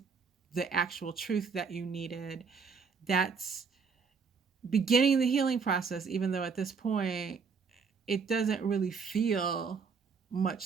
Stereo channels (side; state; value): left; quieter; 5.5 dB